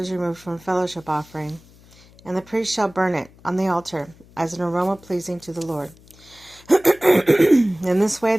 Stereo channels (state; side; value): noise; left; hum, 26 dB below the sound